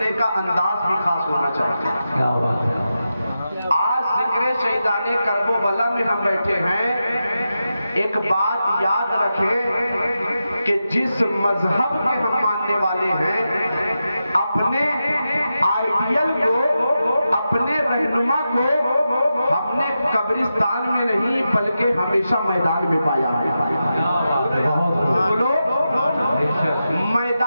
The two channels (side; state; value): both; inverted; correlation -0.90